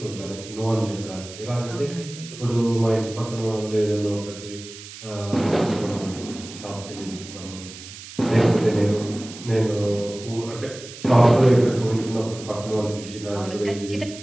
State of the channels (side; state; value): right; noise; hiss, 15 dB below the sound